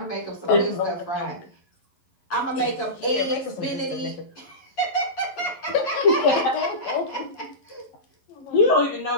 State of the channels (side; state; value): right; late; 11 ms